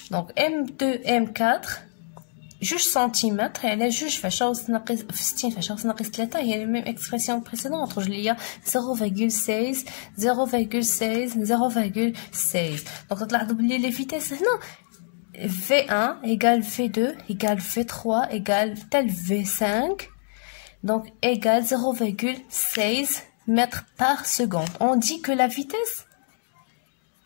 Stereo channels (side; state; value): right; silent; digital silence